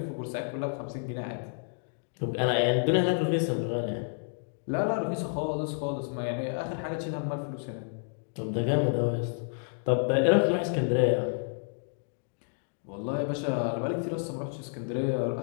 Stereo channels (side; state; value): right; silent; digital silence